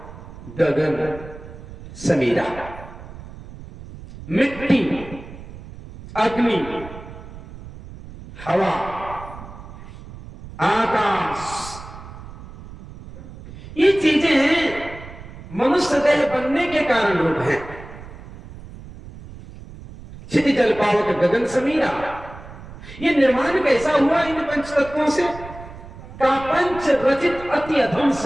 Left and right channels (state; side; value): noise; right; rumble, 15 dB below the sound